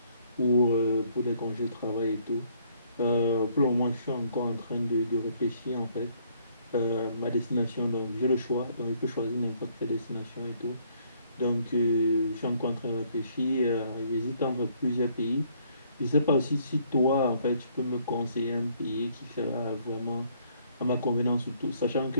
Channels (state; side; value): inverted; both; correlation -0.65